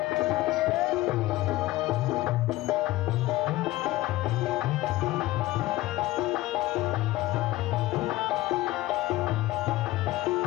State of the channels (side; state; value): right; quieter; 17.4 dB